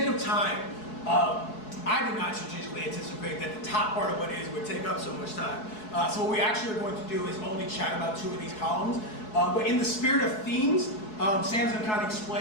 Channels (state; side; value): late; right; 4.7 ms